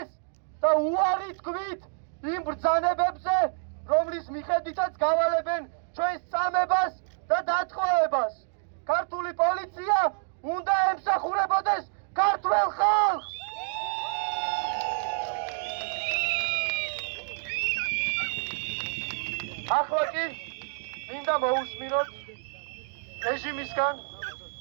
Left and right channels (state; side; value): silent; left; digital silence